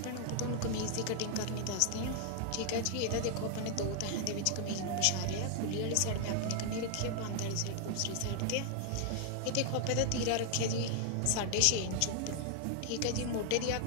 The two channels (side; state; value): both; different; correlation 0.00